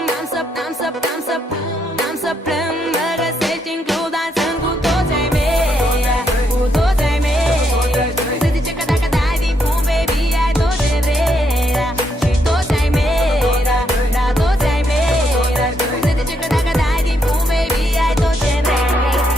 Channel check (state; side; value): normal; both; correlation 0.76